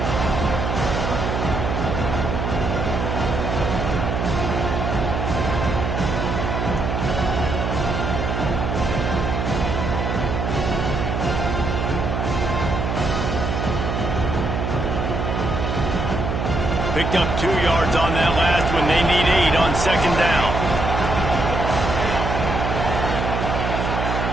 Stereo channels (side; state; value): right; noise; hum, 1 dB below the sound